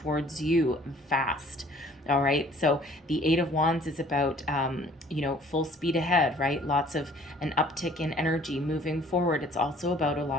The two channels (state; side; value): normal; both; correlation 0.55